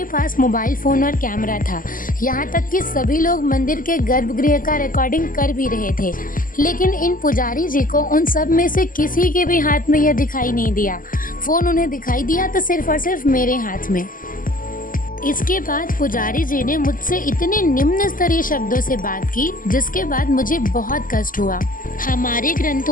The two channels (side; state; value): right; late; 0.40 ms